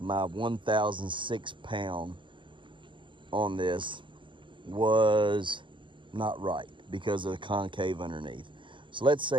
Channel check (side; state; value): left; late; 0.24 ms